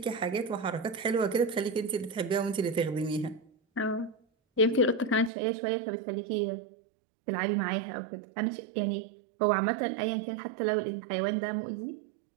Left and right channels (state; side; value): drops out; left; at 5.3 s